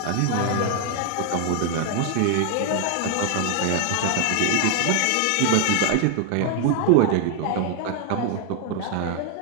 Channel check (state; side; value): different; both; correlation 0.00